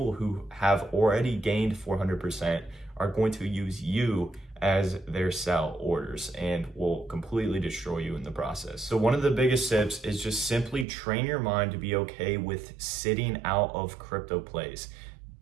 who have already gained 400% are going to use you as their sell orders and will completely destroy you in the process. So one of the biggest tips is just simply train your mind to be okay with sitting out of crypto plays.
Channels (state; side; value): drops out; left; at 10.9 s